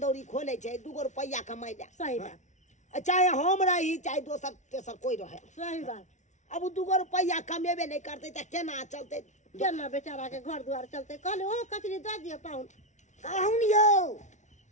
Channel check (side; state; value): right; late; 0.35 ms